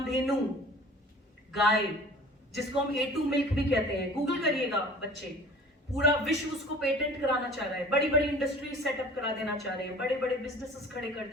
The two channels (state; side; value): normal; both; correlation 0.44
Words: गाय, जिसको हम A2 मिल्क भी कहते हैं, गूगल करिएगा बच्चे, पूरा विश्व उसको पेटेंट कराना चाह रहा है, बड़ी बड़ी इंडस्ट्री सेटअप करा देना चाह रहे हैं, बड़े बड़े बिजनेसेस खड़े कर